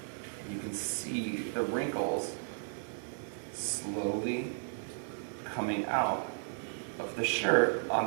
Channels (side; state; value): left; silent; digital silence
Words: You can see the wrinkles slowly coming out of the shirt on